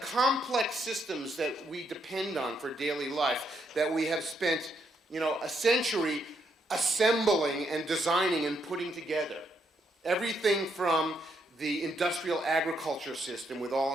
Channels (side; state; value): both; normal; correlation 0.76